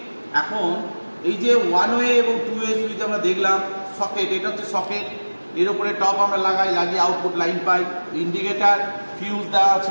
এখন এই যে 1 ওয়ে এবং 2A সুইচ আমরা দেখলাম, সকেট, এটা হচ্ছে সকেট, এর উপরে টপ আমরা লাগিয়ে আউটপুট লাইন পাই। ইন্ডিকেটার, ফিউজ দেওয়া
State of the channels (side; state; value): both; inverted; correlation -1.00